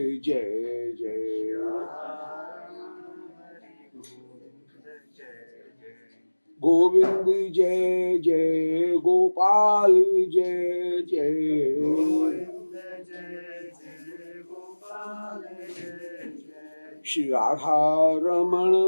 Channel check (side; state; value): both; inverted; correlation -1.00